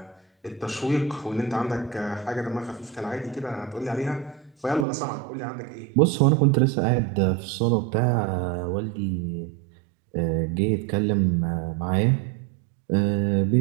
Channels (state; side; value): drops out; left; at 4.9 s